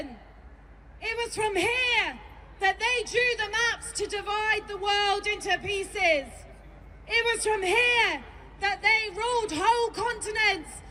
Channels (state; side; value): identical; both; correlation 1.00